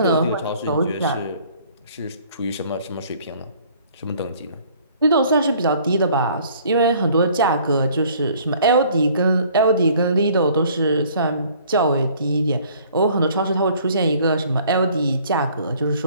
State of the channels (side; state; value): both; inverted; correlation -0.56